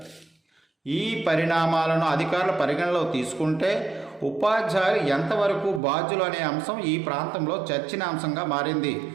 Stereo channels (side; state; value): left; drops out; at 5.8 s